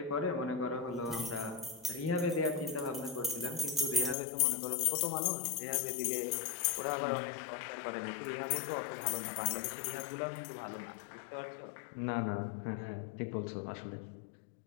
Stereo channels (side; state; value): right; drops out; at 4.2 s